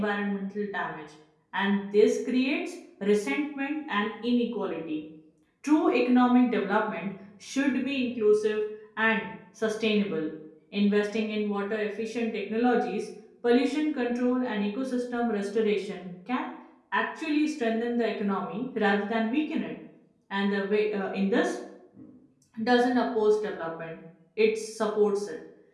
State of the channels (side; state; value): both; identical; correlation 1.00